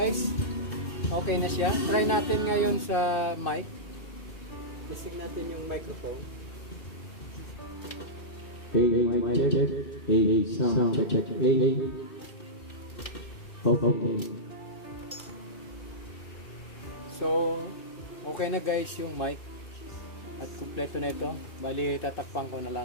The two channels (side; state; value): right; late; 2.6 ms